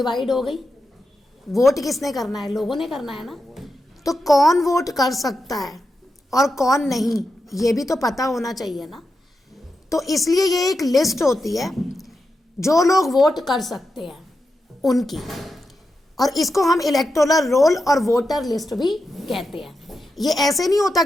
हो गई। वोट किसने करना है? लोगों ने करना है ना। तो कौन वोट कर सकता है और कौन नहीं, ये भी तो पता होना चाहिए ना। तो इसलिए ये एक लिस्ट होती है जो लोग वोट कर सकते हैं उनकी, और इसको हम इलेक्टोरल रोल और वोटर लिस्ट भी कहते हैं। ये ऐसे नहीं होता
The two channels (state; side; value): normal; both; correlation 0.88